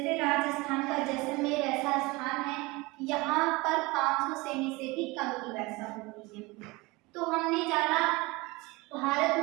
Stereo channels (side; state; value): left; quieter; 23.5 dB